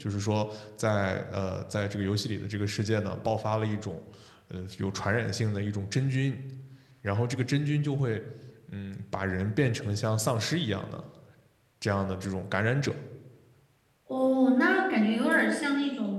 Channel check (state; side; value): identical; both; correlation 1.00